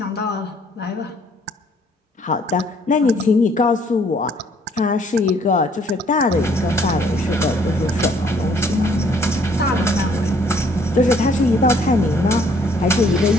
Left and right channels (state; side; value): normal; both; correlation 0.63